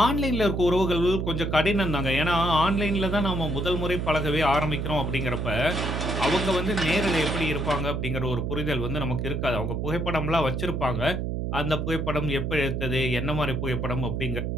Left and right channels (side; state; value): right; noise; hum, 1 dB below the sound